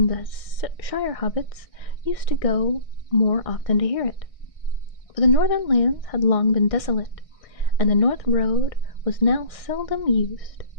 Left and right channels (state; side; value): late; right; 1.6 ms